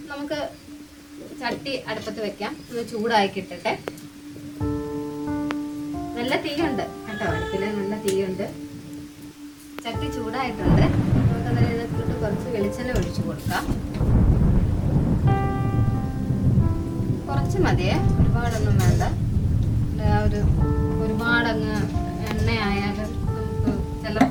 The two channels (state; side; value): identical; both; correlation 1.00